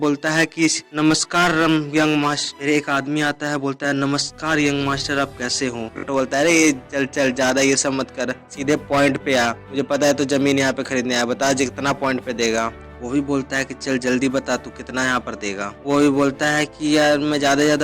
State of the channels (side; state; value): both; identical; correlation 1.00